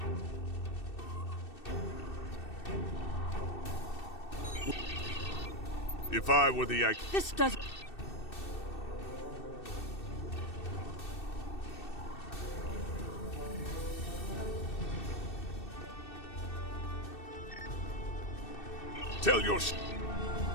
If I were the This doesn't... Tell your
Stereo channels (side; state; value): right; late; 2.6 ms